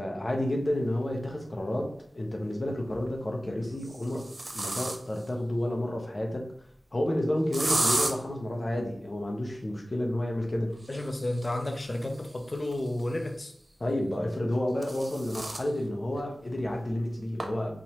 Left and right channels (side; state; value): both; normal; correlation 0.96